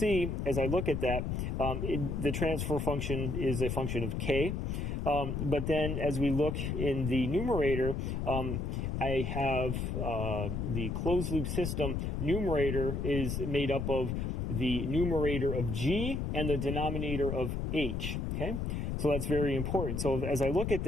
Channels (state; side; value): noise; left; rumble, 1 dB below the sound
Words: as I look at that, the transfer function is a function of K. But then as we look in the numerator, I have the closed loop system numerator is made up of the numerator of G and the denominator of H. Okay, so that's very important. So as I look at